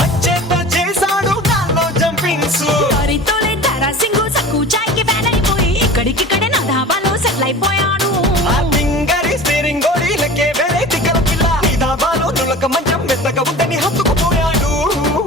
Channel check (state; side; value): normal; both; correlation 0.38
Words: అచ్చేత చేశాడు దానిలో జంపింగ్స్ తోలే తారాసింగు సక్కు చాయ్ కి ఫ్యాన్ అయిపోయి ఇక్కడికిక్కడే నా ధాబాలో సెటిల్ అయిపోయాడు ఆ తింగరి స్టీరింగ్ గోడీలకే వేరే తిక్కల పిల్ల నీ ధాబాలో నులక మంచం మెత్తగా ఉంటని హత్తుకుపోయాడు